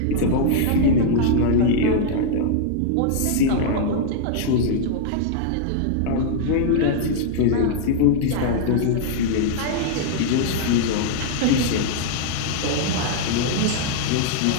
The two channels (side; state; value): both; different; correlation -0.01